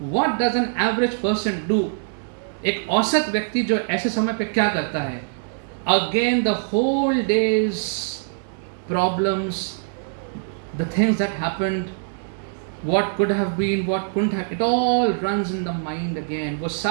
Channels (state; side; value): silent; left; digital silence